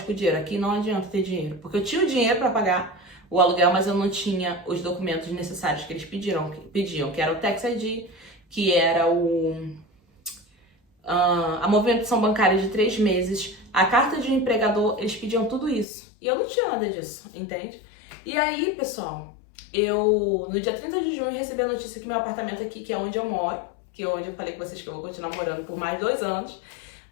com dinheiro. Aqui não adianta ter dinheiro, porque eu tinha o dinheiro para pagar o aluguel, mas eu não tinha os documentos necessários que eles pediam, que era o Tax ID, que era a movimentação bancária de 3 meses, a carta de um empregador, eles pediam tudo isso. E eu não tinha nada disso, entende? E aí, pessoal, eu no dia 30 de junho recebi a notícia que meu apartamento aqui, que é onde eu moro, que é onde eu falei com vocês que eu vou continuar morando por mais 2 anos,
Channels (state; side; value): drops out; right; at 15.9 s